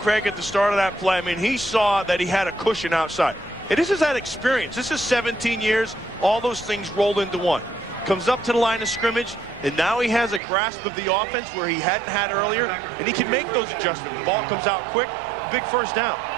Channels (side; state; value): left; drops out; at 10.4 s